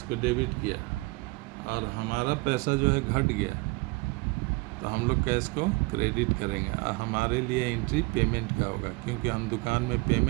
को डेबिट किया और हमारा पैसा जो है घट गया, तो हम लोग कैश को क्रेडिट करेंगे और हमारे लिए एंट्री पेमेंट का होगा, क्योंकि हम दुकान में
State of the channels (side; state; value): left; quieter; 25.7 dB